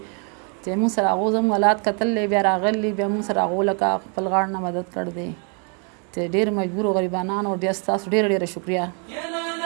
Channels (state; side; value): quieter; left; 38.4 dB